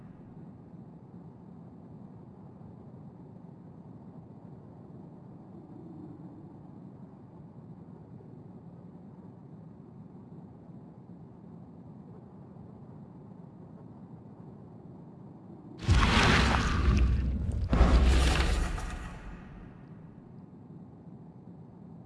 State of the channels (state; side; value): identical; both; correlation 1.00